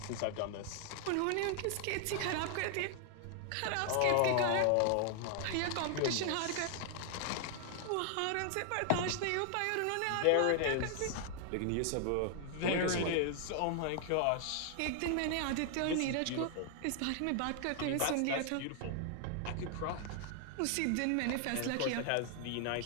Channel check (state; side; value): different; both; correlation 0.00